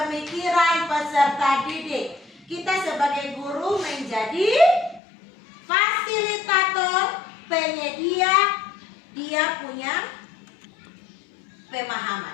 peserta didik. Kita sebagai guru menjadi fasilitator, penyedia, dia punya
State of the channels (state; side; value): drops out; right; at 5.0 s